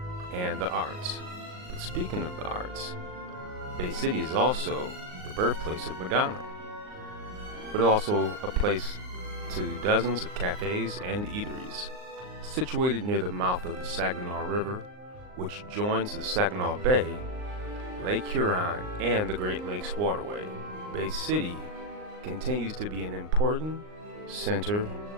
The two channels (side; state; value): left; late; 39 ms